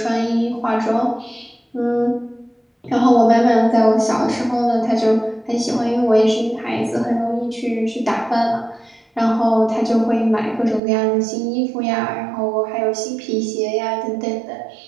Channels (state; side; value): drops out; left; at 10.8 s